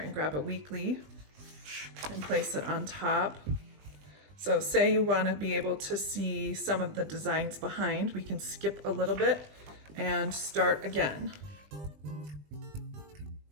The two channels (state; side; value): late; left; 20 ms